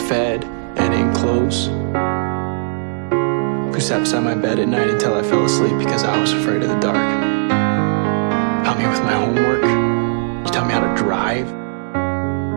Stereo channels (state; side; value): silent; left; digital silence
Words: and in clothes, who sat beside my bed at night until I fell asleep because I was afraid of the dark. Helped me with my homework. You taught me how to drive.